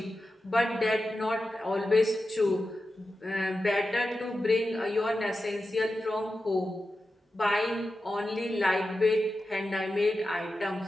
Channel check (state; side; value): normal; both; correlation 0.91